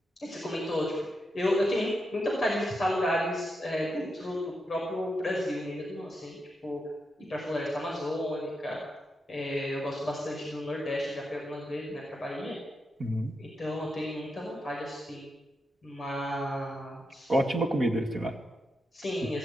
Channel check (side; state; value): both; normal; correlation 0.85